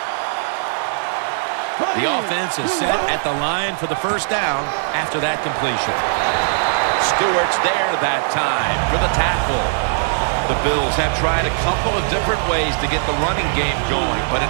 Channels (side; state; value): left; silent; digital silence